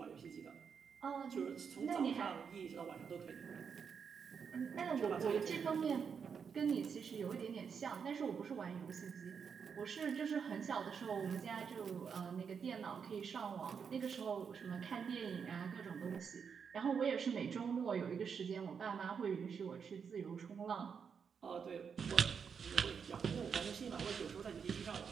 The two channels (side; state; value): left; quieter; 6.5 dB